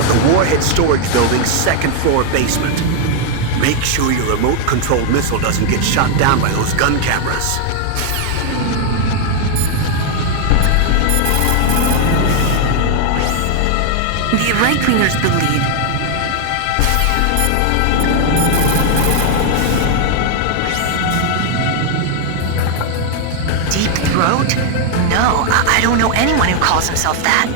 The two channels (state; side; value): different; both; correlation 0.00